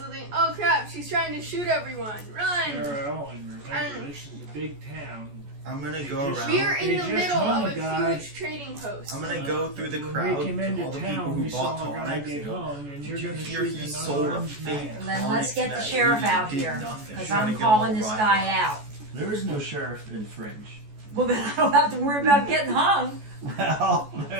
think, oh crap, she's trying to shoot everyone. Run! Farrell, and remember, this is a big town. I'm gonna go Just- around. We're in They the just middle hung of a a guy. huge trading post. I'm gonna go through the When crowd we came to into all the people town, who we bought saw a guy tonics. get and go, hung, and Did you're you going to hear shoot he an sold a unarmed fake man. Then tonic let's get the that sheriff lady out did here nothing? because Trying to I'm get them calling all this riled guy up. out. There is no sheriff in Fringe. Well, then I don't have to worry about getting hung. Well,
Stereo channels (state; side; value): late; left; 14 ms